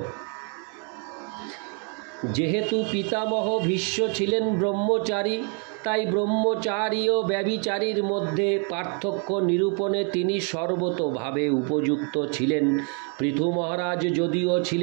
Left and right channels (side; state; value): left; quieter; 38.4 dB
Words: যেহেতু পিতামহ ভীষ্ম ছিলেন ব্রহ্মচারী, তাই ব্রহ্মচারী ও ব্যভিচারীর মধ্যে পার্থক্য নিরূপণে তিনি সর্বতোভাবে উপযুক্ত ছিলেন। পৃথু মহারাজ যদিও